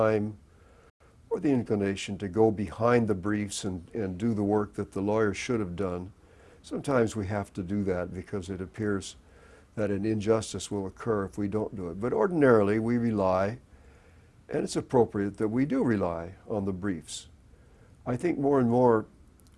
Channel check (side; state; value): both; identical; correlation 1.00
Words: or the inclination to go behind the briefs and do the work that the lawyer should have done. Sometimes we have to do that because it appears that an injustice will occur if we don't do it. But ordinarily we rely, and it's appropriate that we do rely on the briefs. I think more and more